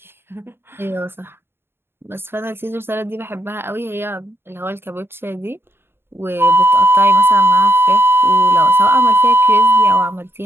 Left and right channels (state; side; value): late; left; 0.11 ms